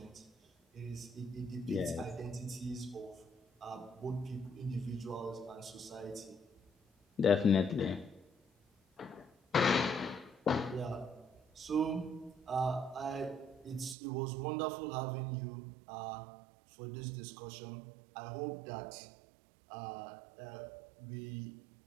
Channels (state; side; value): drops out; left; at 14.0 s